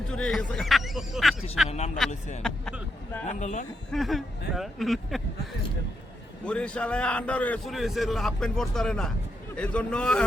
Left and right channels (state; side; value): normal; both; correlation 0.82